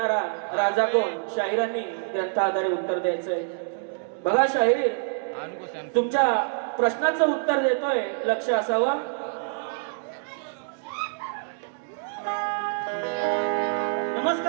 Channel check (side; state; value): left; silent; digital silence